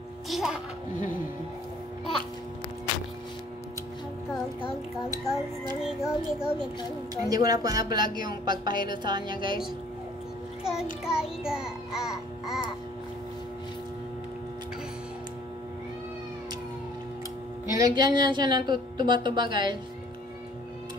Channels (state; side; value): normal; both; correlation 0.56